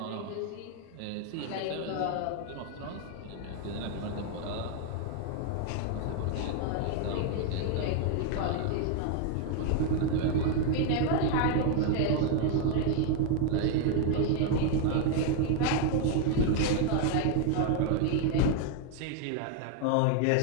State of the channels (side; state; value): both; different; correlation 0.00